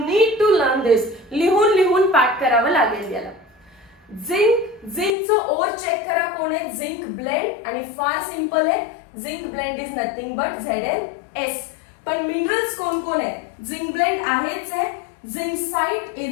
to learn this. लिहून पाठ करावं लागेल याला. झिंकचं ओर चेक करा कोण आहे, झिंक ब्लेंड, आणि फार सिंपल आहे, zinc blend is nothing but ZnS. पण मिनरल्स कोण कोण आहे, झिंक ब्लेंड आहेच आहे, झिंकसाइट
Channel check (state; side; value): drops out; right; at 5.1 s